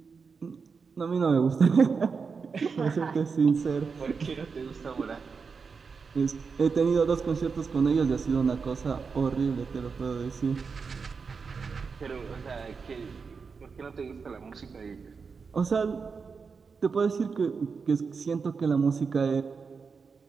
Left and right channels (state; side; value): quieter; left; 5.3 dB